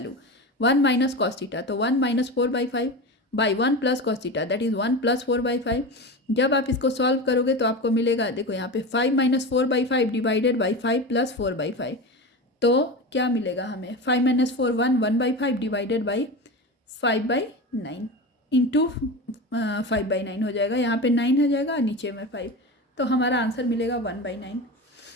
1 minus cos theta, तो 1 minus 4/5 by 1 plus cos theta that is 1 plus 4/5। जब आप इसको सॉल्व करोगे तो आपको मिलेगा, देखो यहाँ पे 5 माइनस 4/5 डिवाइडेड बाई 5 प्लस 4/5, तो क्या मिलेगा हमें 5 माइनस 4 1/5 डिवाइडेड बाई 5/9 इंटू 5/9 हो जाएगा। यहाँ पे 9 हो जाएगा, नीचे में 5, तो हमारा आंसर मिलेगा 1/9।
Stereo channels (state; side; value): normal; both; correlation 0.25